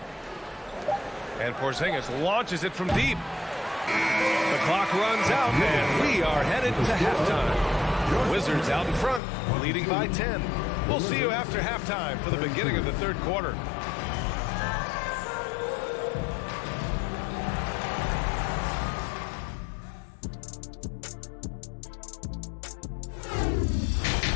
And Porzingis launches it from deep. The clock runs out, and we are headed to halftime. Wizards out in front, leading by 10. We'll see you after halftime for the beginning of the third quarter.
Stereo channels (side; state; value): right; drops out; at 9.2 s